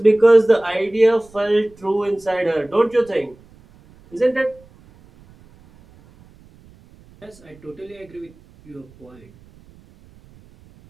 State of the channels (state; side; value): noise; right; rumble, 27 dB below the sound